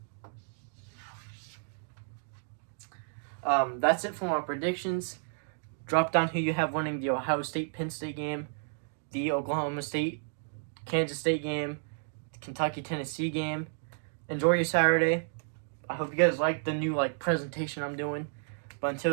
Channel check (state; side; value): silent; left; digital silence